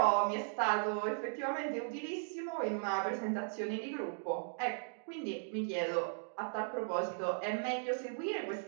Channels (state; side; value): silent; left; digital silence